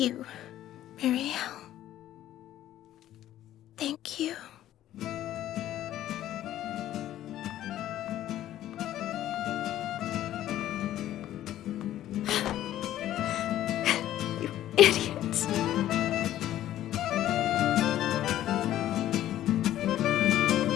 Mireille. Thank you. you idiots.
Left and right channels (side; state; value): right; quieter; 12.9 dB